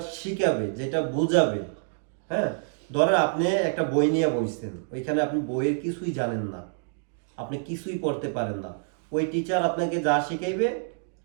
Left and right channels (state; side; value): silent; left; digital silence